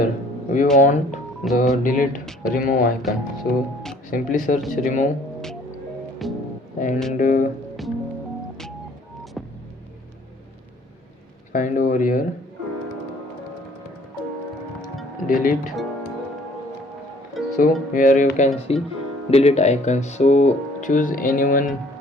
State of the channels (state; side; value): normal; both; correlation 0.57